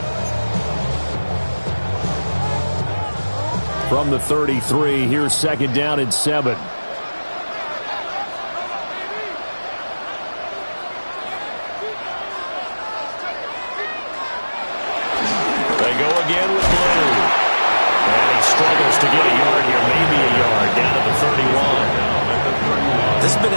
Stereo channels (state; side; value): inverted; both; correlation -1.00